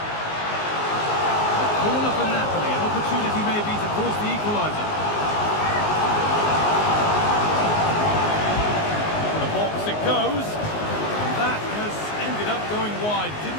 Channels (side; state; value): right; late; 19 ms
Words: corner for Napoli. An opportunity maybe to force the equaliser. The box it goes. And that has ended up going wide.